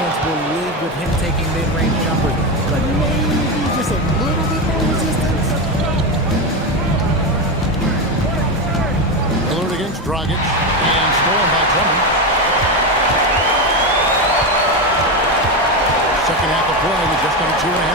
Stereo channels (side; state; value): both; normal; correlation 0.14